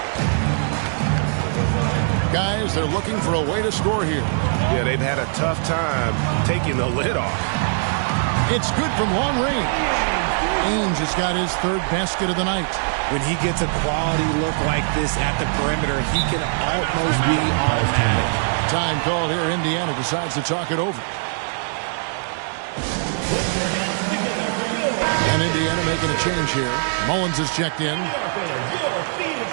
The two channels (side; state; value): left; silent; digital silence